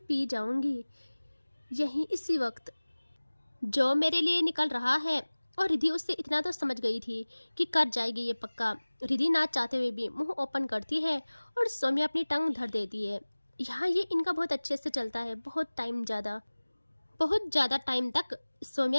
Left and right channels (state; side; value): inverted; both; correlation -1.00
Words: जाऊंगी। यहीं इसी वक्त जो मेरे लिए निकल रहा है। और रिधि उससे इतना तो समझ गई थी कि कर जाएगी ये पक्का। रिधि ना चाहते हुए भी मुंह ओपन करती है और सौम्या अपनी टंग धर देती है। यहाँ ये इनका बहुत अच्छे से चलता है, बहुत ज़्यादा टाइम तक।